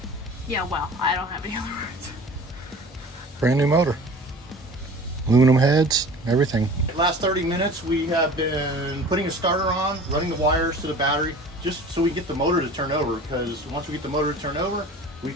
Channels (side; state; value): both; normal; correlation 0.42